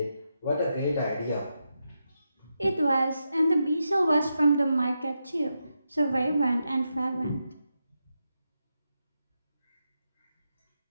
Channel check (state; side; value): inverted; both; correlation -0.86